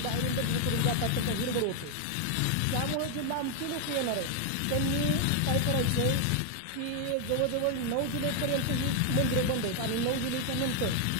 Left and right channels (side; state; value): both; different; correlation 0.00